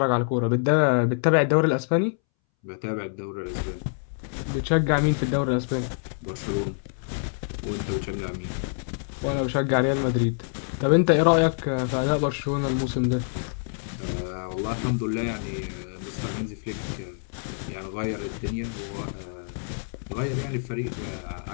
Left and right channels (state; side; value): silent; right; 61 dB below the other